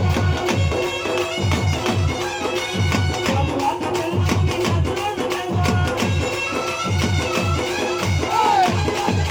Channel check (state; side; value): identical; both; correlation 1.00